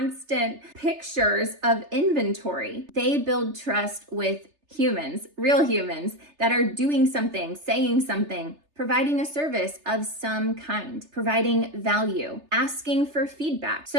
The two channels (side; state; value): left; late; 3.3 ms